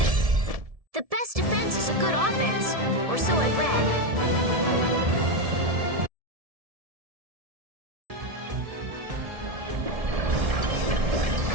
The best defense is a good offense, or so I've read.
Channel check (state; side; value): late; left; 1.7 ms